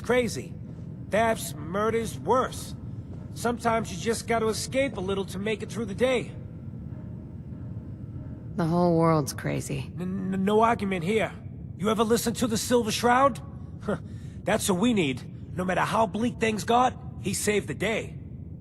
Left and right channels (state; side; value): identical; both; correlation 1.00